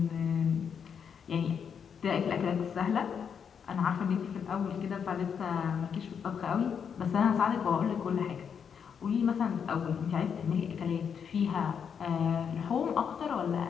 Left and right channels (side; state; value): right; quieter; 7.2 dB